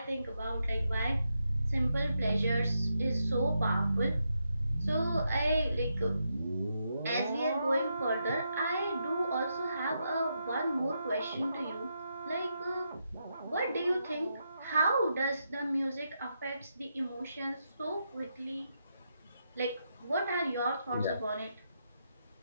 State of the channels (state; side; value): inverted; both; correlation -0.83